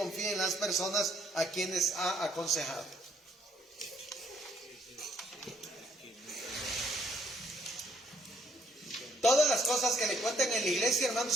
las personas a quienes ha aconsejado. Todas las cosas que le cuenten en la iglesia,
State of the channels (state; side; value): normal; both; correlation 0.68